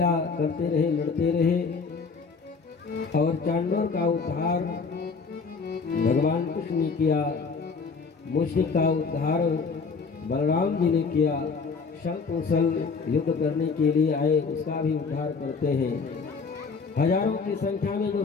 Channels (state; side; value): quieter; right; 4.9 dB